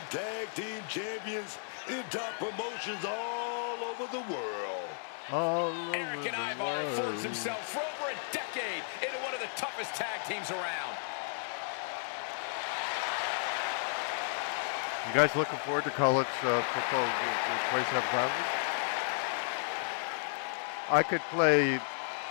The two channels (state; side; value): silent; right; 55 dB below the other